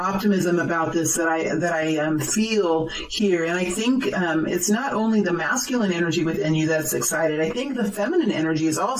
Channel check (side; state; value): both; identical; correlation 1.00